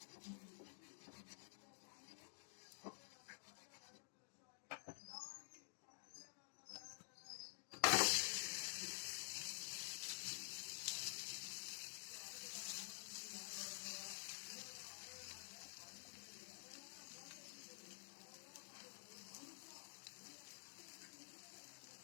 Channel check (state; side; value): silent; right; digital silence